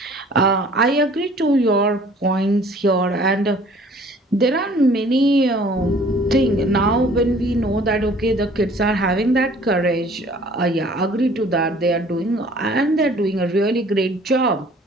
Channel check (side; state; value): both; normal; correlation 0.53